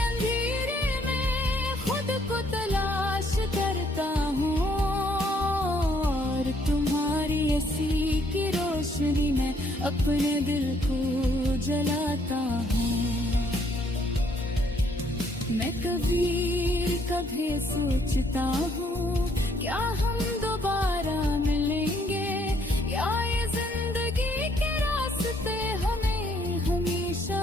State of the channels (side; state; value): both; normal; correlation 0.68